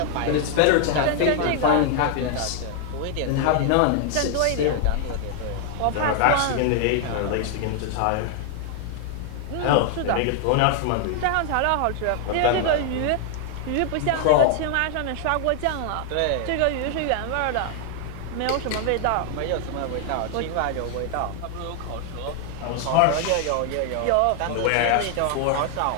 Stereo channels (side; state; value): both; different; correlation 0.00